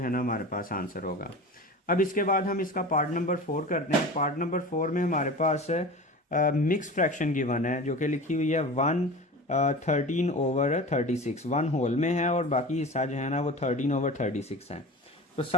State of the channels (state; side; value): normal; both; correlation 0.34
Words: है ना हमारे पास आंसर होगा। अब इसके बाद हम इसका पार्ट नंबर 4 करते हैं। पार्ट नंबर 4 में हमारे पास मिक्स फ्रैक्शन गिवन है, जो कि लिखी हुई है 1/13/36। 1 होल में है और बाकी हिस्सा जो है ना वो 13/36 है। तो